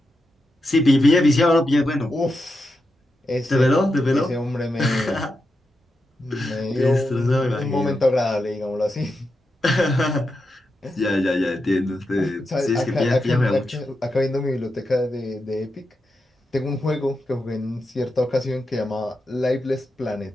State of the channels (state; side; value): normal; both; correlation 0.87